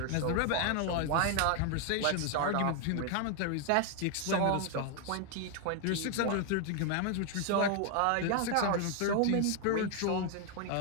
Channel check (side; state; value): both; different; correlation 0.00